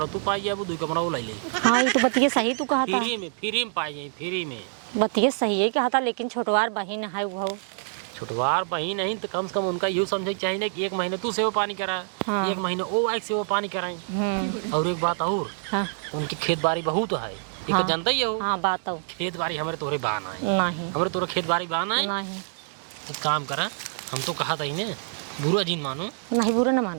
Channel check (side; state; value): left; silent; digital silence